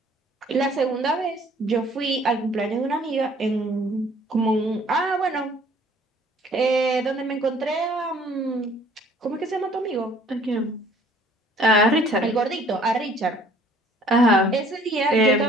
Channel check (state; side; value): normal; both; correlation 0.56